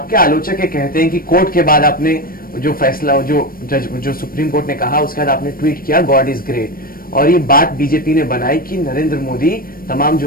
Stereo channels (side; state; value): right; late; 0.42 ms